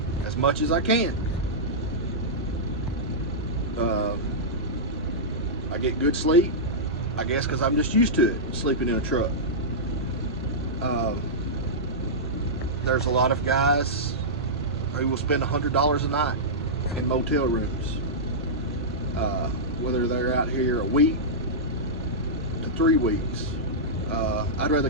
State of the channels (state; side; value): normal; both; correlation -0.13